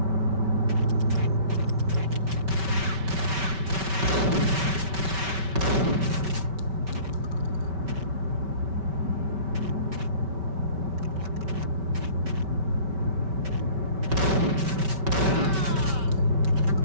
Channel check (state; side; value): late; left; 5.2 ms